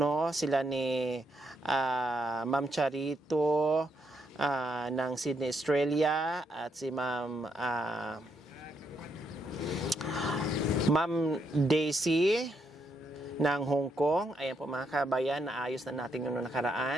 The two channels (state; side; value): normal; both; correlation 0.78